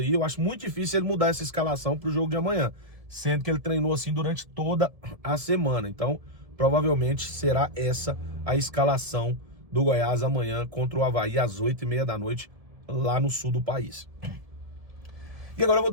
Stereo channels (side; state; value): left; late; 1.7 ms